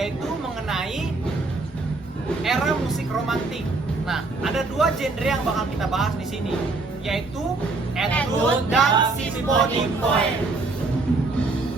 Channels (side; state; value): left; quieter; 3.6 dB